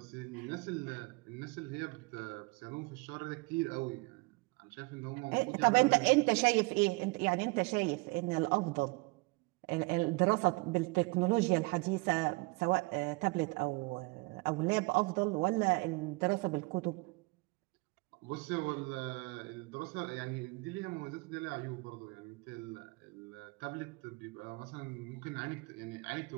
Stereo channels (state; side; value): quieter; left; 26.2 dB